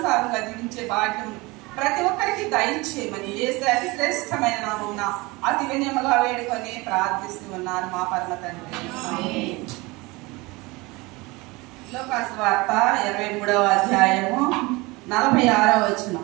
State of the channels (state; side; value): quieter; left; 23.6 dB